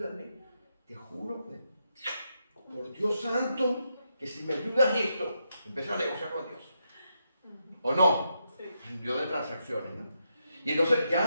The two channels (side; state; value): both; inverted; correlation -0.82